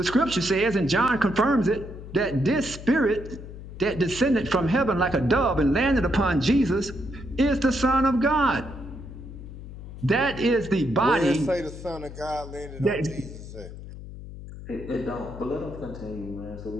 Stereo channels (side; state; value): left; noise; hum, 13 dB below the sound